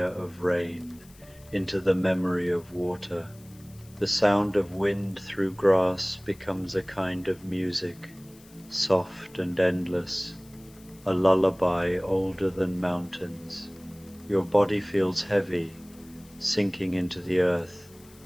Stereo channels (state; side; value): noise; left; hiss, 25 dB below the sound